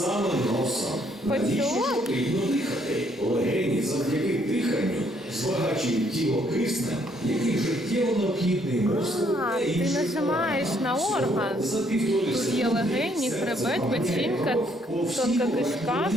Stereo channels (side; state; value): both; normal; correlation 0.68